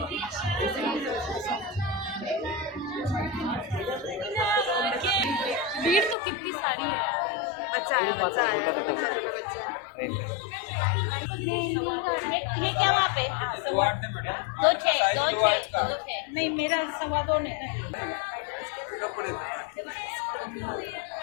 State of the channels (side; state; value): right; drops out; at 6.2 s